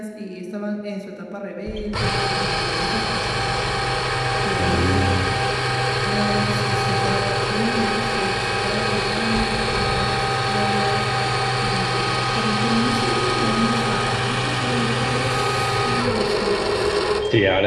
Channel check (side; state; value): both; identical; correlation 1.00